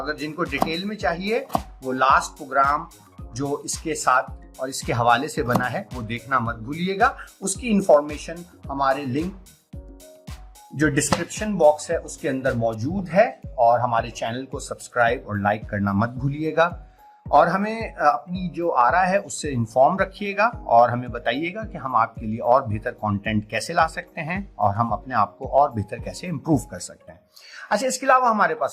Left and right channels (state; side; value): identical; both; correlation 1.00